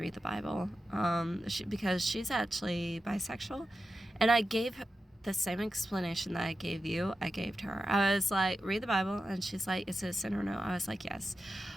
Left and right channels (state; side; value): normal; both; correlation 0.90